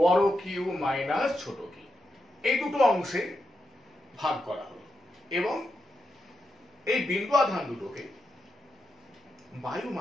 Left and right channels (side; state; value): both; normal; correlation 0.86